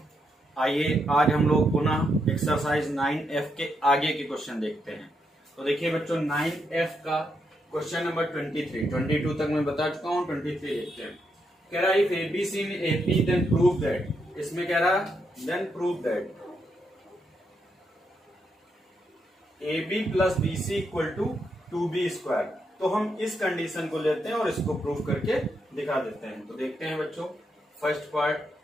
आइए आज हम लोग पुनः एक्सरसाइज 9F के आगे के क्वेश्चन देखते हैं। तो देखिए बच्चों 9F का क्वेश्चन नंबर 22 तक मैं बता चुका हूँ। 23 देखते हैं। कह रहा है if ABC in AP then prove that, इसमें कह रहा then prove that AB plus BC equal to 2B square. तो हम इस कंडीशन को लेते हैं और इसको प्रूव करके दिखा देते हैं। तो देखते हैं बच्चों, first part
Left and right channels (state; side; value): normal; both; correlation 0.80